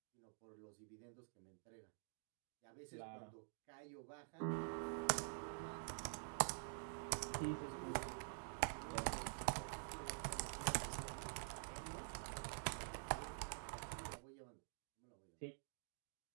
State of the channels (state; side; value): silent; left; digital silence